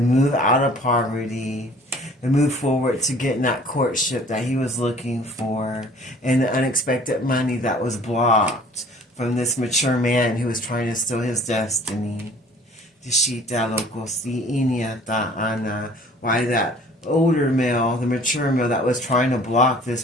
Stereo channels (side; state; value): both; normal; correlation 0.51